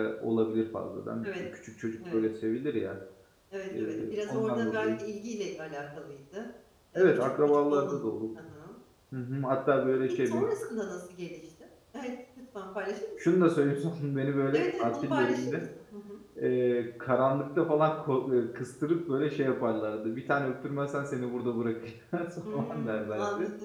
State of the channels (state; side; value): identical; both; correlation 1.00